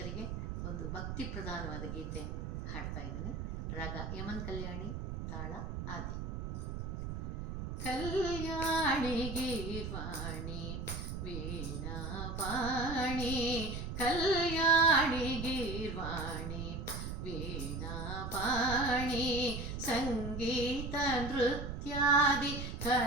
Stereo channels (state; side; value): noise; right; rumble, 5 dB below the sound